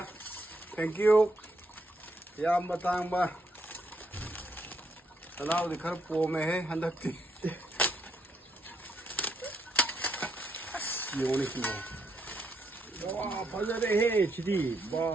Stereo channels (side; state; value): both; normal; correlation 0.76